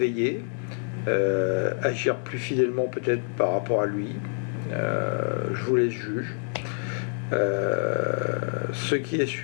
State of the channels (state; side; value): silent; right; 57 dB below the other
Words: agir plus fidèlement peut-être par rapport à lui. Je vous laisse juger. Ce qui est